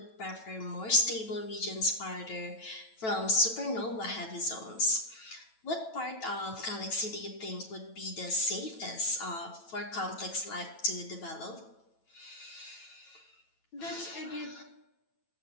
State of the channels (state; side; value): late; right; 9.1 ms